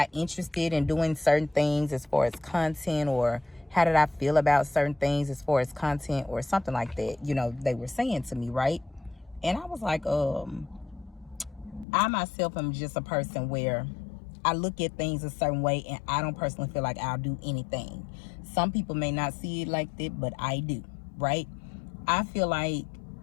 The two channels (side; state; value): right; drops out; at 11.9 s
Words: interested in doing certain things as far as content, or how did I feel about certain things as far as content or something like that? You know, they were saying to me, right? And I was like, I myself am just a person where I look at things a certain way, and I don't personally feel like I'll do anything. Some people may not see it like that, but I do, right? I feel like